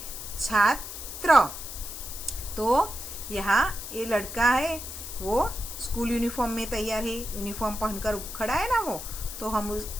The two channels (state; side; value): noise; left; hiss, 9 dB below the sound